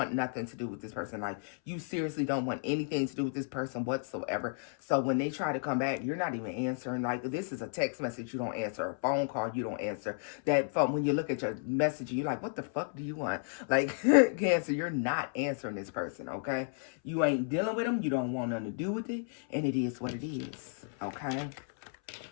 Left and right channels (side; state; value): right; silent; 56 dB below the other